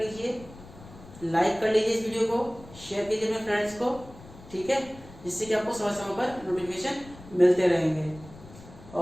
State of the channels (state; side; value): noise; left; rumble, 19 dB below the sound